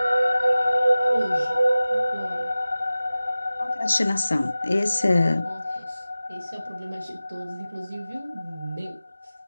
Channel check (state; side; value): inverted; both; correlation -0.96